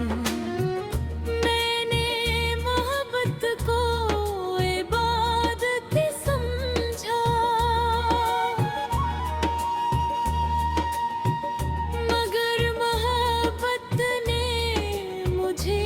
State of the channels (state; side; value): identical; both; correlation 1.00